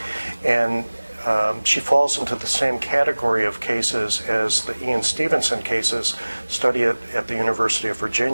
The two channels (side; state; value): both; inverted; correlation -1.00